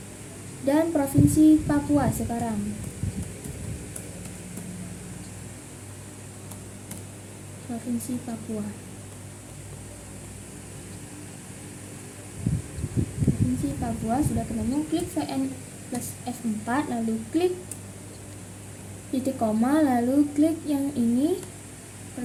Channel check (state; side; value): identical; both; correlation 1.00